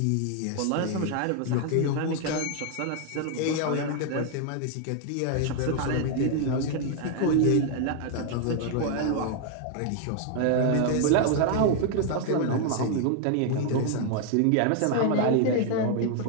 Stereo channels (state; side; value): different; both; correlation 0.00